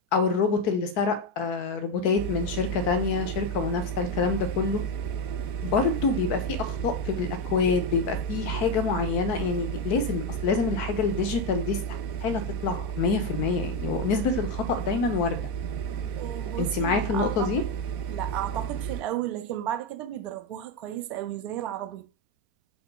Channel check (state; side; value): late; right; 4.6 ms